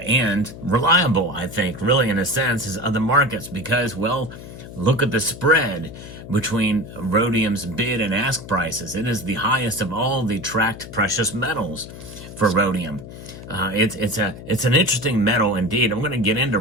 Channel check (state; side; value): noise; left; hum, 14 dB below the sound